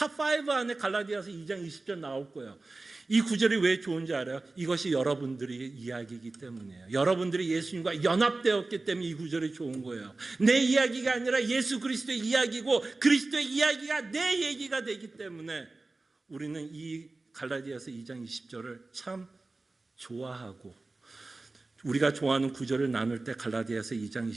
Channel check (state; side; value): quieter; left; 3.3 dB